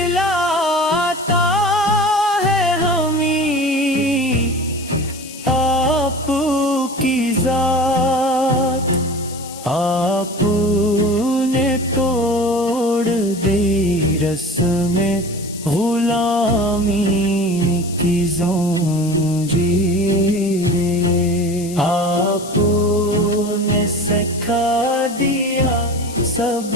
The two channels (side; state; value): left; noise; hiss, 15 dB below the sound